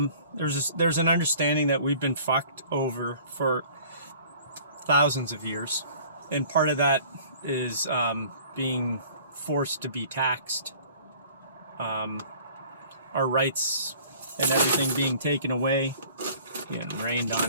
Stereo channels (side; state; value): both; inverted; correlation -0.50